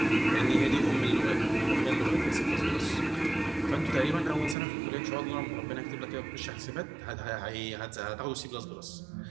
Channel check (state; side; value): drops out; left; at 4.5 s